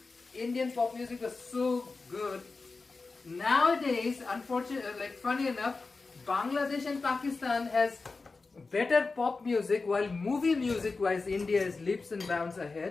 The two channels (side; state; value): right; quieter; 4.0 dB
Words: Indian pop music was so good. Nowadays, unfortunately, like funny enough, Bangladesh and Pakistan has better pop music, while movie music wise India is leaps and bounds